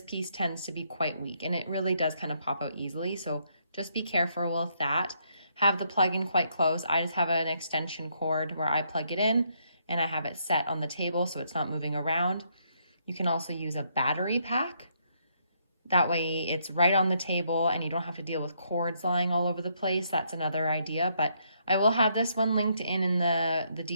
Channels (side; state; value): both; inverted; correlation -0.73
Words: piece tends to be quite weak, and it really does kind of pop out easily. So just be careful with that. Have the plug-in quite close. I just have an extension cord where I plug it in, and I have it set on the table so it's not moving around. You can also use a battery pack. That way it's right on the table and you don't have to deal with cords lying all over the place. That's another idea, but I will have this one linked in the